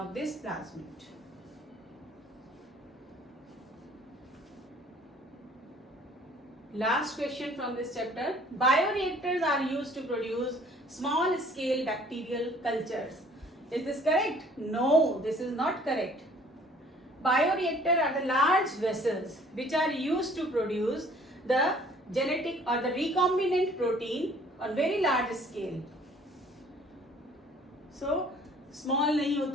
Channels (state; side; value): normal; both; correlation 0.55